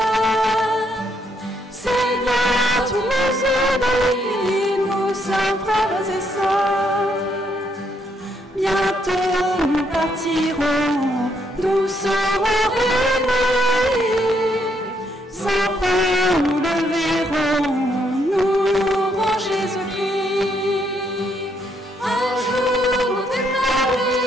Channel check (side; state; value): both; normal; correlation 0.74